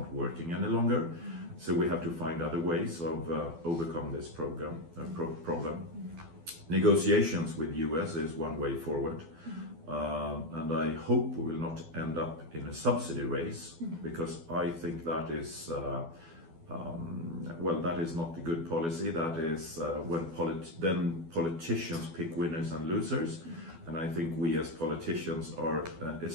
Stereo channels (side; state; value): left; late; 12 ms